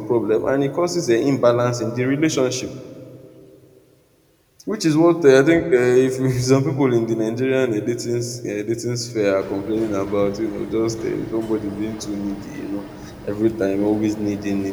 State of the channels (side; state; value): both; identical; correlation 1.00